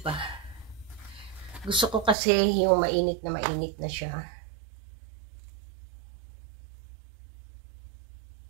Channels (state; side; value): drops out; left; at 2.1 s